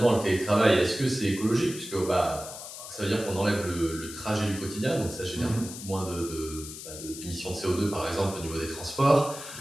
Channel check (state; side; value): noise; left; hiss, 11 dB below the sound